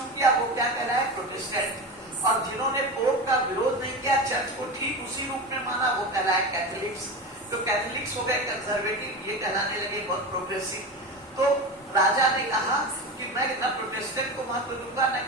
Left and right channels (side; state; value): both; normal; correlation 0.25